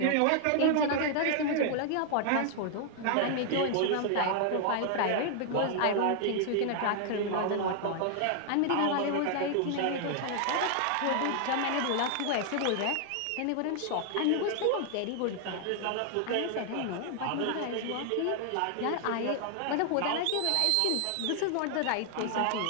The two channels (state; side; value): different; both; correlation 0.00